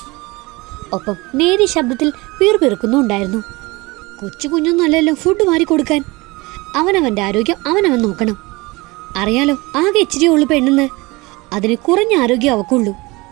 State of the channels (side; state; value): left; quieter; 23.4 dB